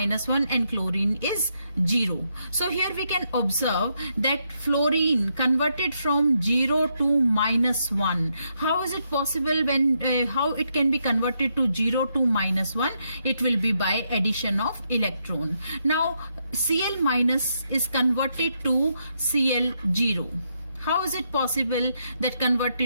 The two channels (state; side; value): inverted; both; correlation -0.79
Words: 1 and chlorine is 0. So here we can observe that fluorine converted from 0 to minus 1. How is it possible? When how it can be converted to 0 to minus 1? It will be by addition of electron. Now Cl minus is converted to Cl0. How is it possible that